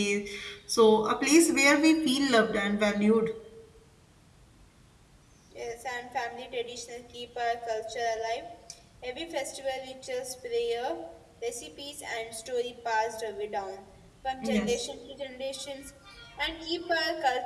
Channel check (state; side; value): identical; both; correlation 1.00